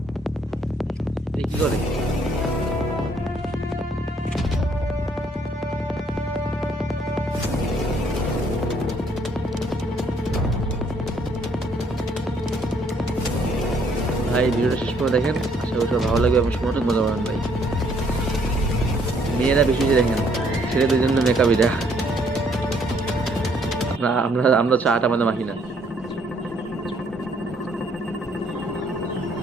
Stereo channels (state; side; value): normal; both; correlation 0.66